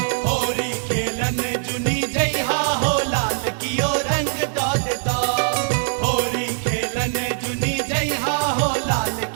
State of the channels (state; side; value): silent; left; digital silence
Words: होली खेलन जुनी जइहा हो लाल कियो रंग दादता होली खेलन जुनी जइहा हो लाल